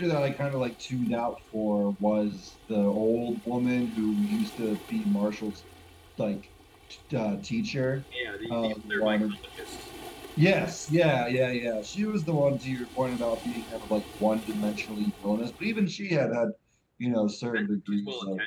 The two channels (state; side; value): identical; both; correlation 1.00